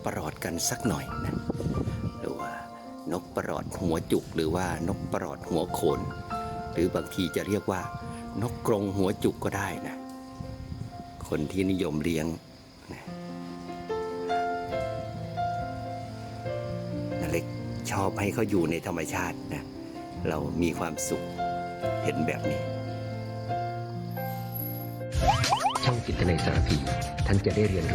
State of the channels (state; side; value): identical; both; correlation 1.00